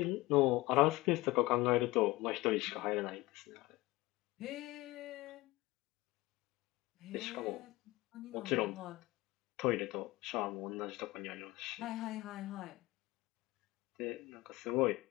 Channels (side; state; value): right; quieter; 19.9 dB